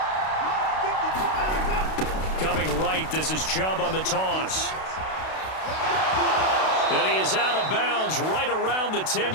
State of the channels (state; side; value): late; right; 32 ms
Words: Coming right, this is Chubb on the toss. And he is out of bounds right around the